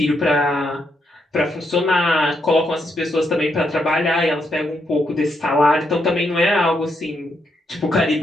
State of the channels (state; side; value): normal; both; correlation 0.79